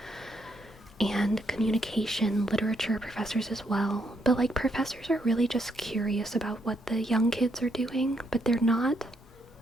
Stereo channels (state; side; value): normal; both; correlation 0.76